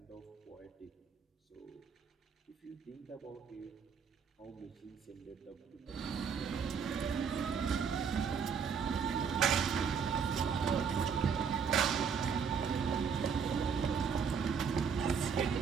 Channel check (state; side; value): quieter; left; 6.5 dB